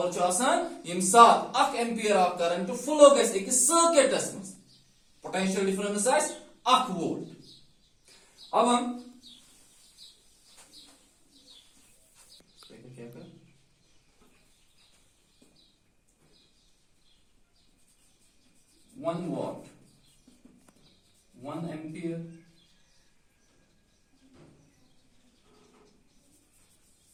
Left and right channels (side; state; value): both; identical; correlation 1.00